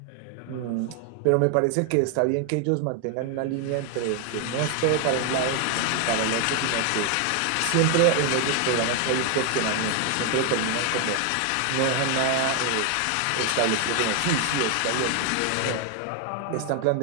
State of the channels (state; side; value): different; both; correlation 0.01